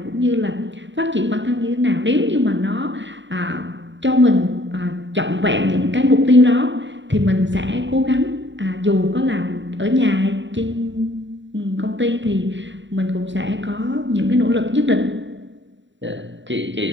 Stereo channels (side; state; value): left; late; 0.54 ms